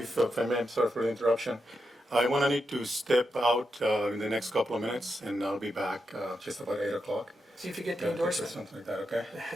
I may, I'm sorry for the interruption. I want to need to step out in the next couple of minutes, and I'll be back just about 8 o'clock. see if you get the Or endorsement. something like that, okay?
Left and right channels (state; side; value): normal; both; correlation 0.86